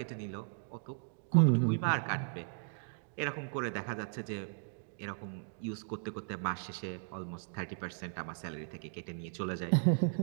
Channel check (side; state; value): left; silent; digital silence